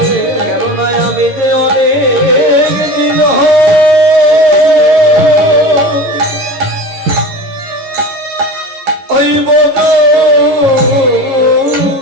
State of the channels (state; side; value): late; left; 11 ms